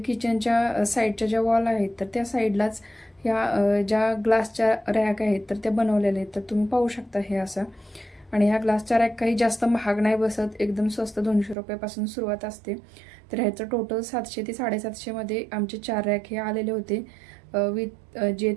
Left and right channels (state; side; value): drops out; left; at 11.6 s